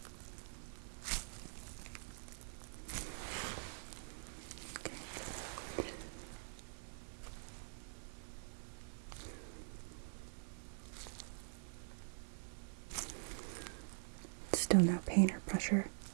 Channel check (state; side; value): silent; left; digital silence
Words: okay. Still no pain or pressure.